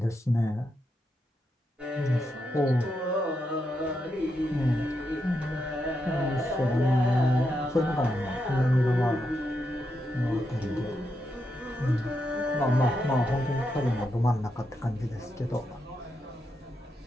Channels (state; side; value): normal; both; correlation 0.83